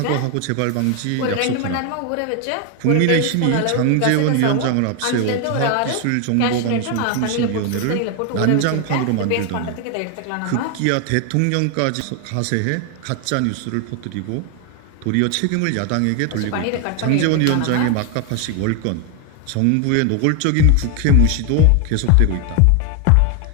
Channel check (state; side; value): different; both; correlation 0.01